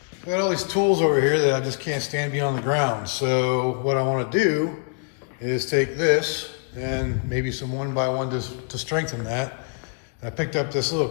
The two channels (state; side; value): quieter; right; 37.4 dB